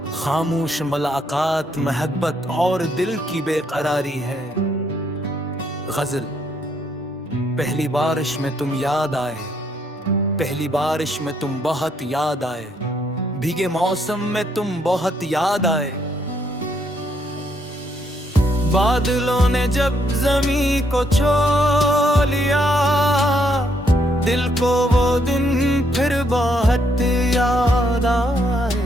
खामोश मुलाकात, महब्बत और दिल की बेकरारी है। गज़ल। पहली बारिश में तुम याद आए, पहली बारिश में तुम बहुत याद आए, भीगे मौसम में तुम बहुत याद आए। बादलों ने जब जमी को छू लिया, दिल को वो दिन फिर बहुत याद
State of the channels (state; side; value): normal; both; correlation 0.72